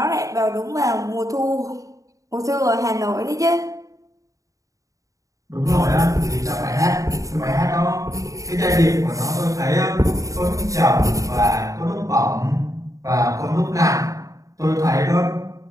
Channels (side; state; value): left; late; 0.16 ms